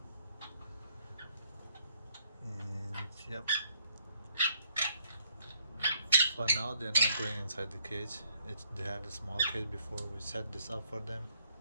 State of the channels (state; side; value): inverted; both; correlation -0.69